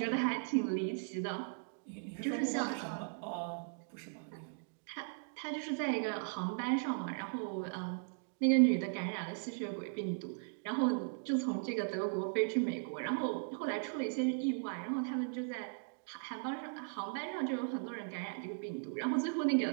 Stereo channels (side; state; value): left; silent; digital silence